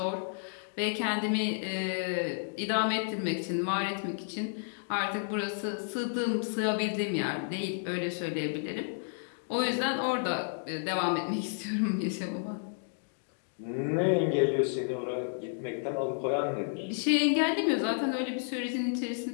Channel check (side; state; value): right; silent; digital silence